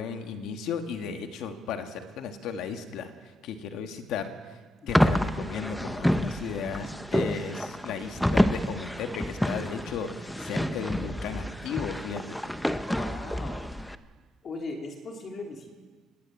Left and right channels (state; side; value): normal; both; correlation 0.86